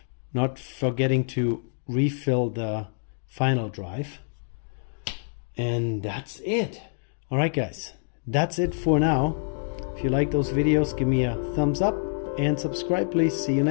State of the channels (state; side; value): silent; right; digital silence